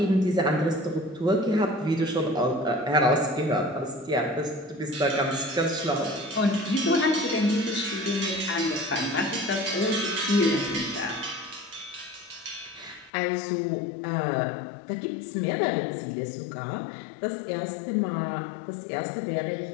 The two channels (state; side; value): drops out; right; at 13.1 s